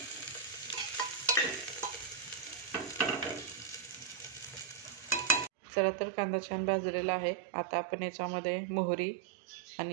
चला तर कांदा छान भाजलेला आहे। आता आपण याच्यामध्ये मोहरी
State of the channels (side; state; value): left; drops out; at 5.5 s